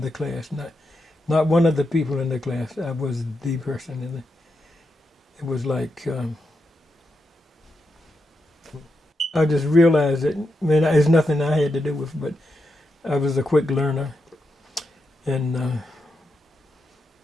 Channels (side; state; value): both; normal; correlation 0.85